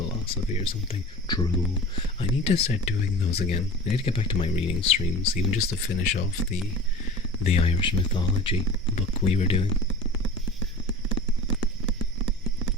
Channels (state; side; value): normal; both; correlation 0.36